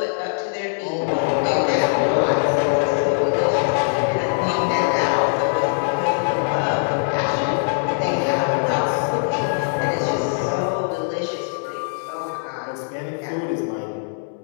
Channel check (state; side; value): silent; right; digital silence